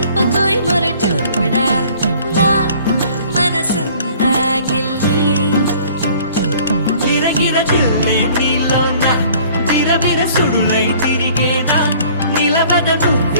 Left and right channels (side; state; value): both; inverted; correlation -0.53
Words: మొరటోడా నా మనసంతా గిల్లి గిరగిర తిల్లే నీలోన విరవిర సుడులై తిరిగేనా నిలబడ